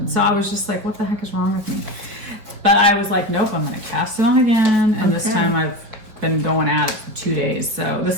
So I was just like, what the heck is wrong with me? But I was like, nope, I'm going to cast it on again. And this time I've been going at it for 2 days. So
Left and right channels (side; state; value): left; late; 5.0 ms